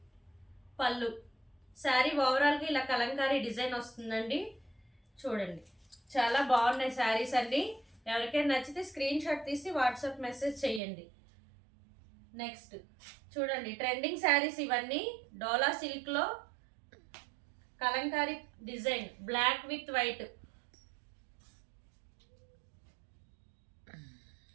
పళ్ళు, శారీ ఓవరాల్గా ఇలా కలంకారీ డిజైన్ వస్తుందండి. చూడండి, చాలా బాగున్నాయి శారీస్ అండి. ఎవరికైనా నచ్చితే స్క్రీన్ షాట్ తీసి వాట్సాప్ మెసేజ్ చేయండి. నెక్స్ట్ చూడండి, ట్రెండింగ్ శారీస్ ఇవన్నీ. డోలా సిల్క్లో kalamkari design, black with white.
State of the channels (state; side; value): drops out; left; at 10.8 s